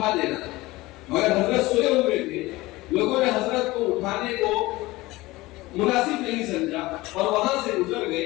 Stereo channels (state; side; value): quieter; right; 20.0 dB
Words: دینا، مگر حضرت سوئے ہوئے تھے۔ لوگوں نے حضرت کو اٹھانے کو مناسب نہیں سمجھا اور وہاں سے گزر گئے،